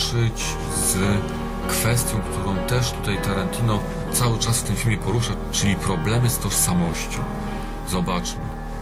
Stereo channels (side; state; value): both; identical; correlation 1.00